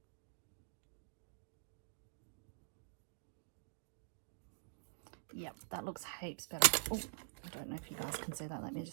Yep, that looks heaps better. Oh, I don't know if you guys can see that. Let me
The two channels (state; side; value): silent; left; digital silence